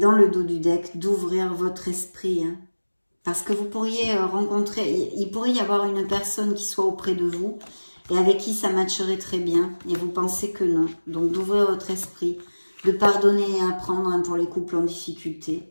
le dos du deck, d'ouvrir votre esprit. Hein. Parce que vous pourriez rencontrer, il pourrait y avoir une personne qui soit auprès de vous et avec qui ça matcherait très bien. Et vous pensez que non. Donc d'ouvrir votre esprit, de pardonner et apprendre hein, pour les couples en difficulté.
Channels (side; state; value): both; inverted; correlation -1.00